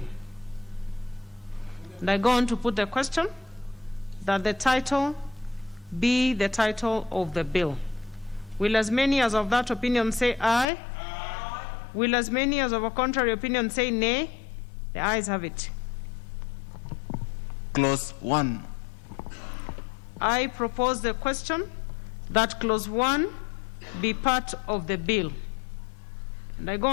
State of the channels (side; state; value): right; drops out; at 10.7 s